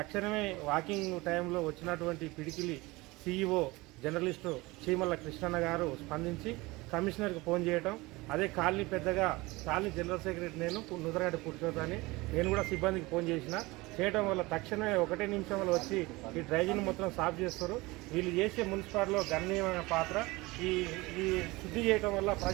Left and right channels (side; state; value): left; quieter; 22.1 dB